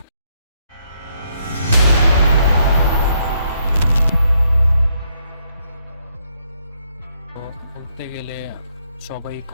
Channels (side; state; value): both; inverted; correlation -0.74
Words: তো বলতে গেলে সবাই